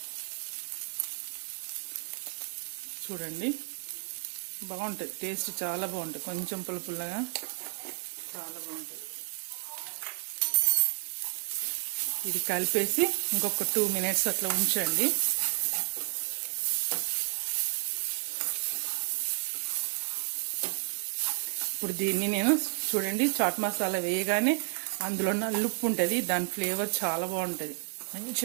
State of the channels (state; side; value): silent; left; digital silence